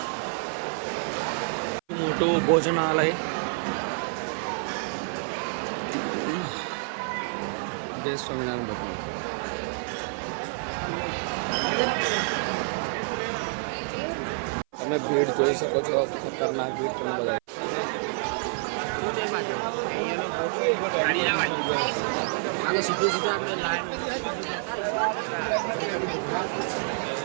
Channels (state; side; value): silent; left; 55 dB below the other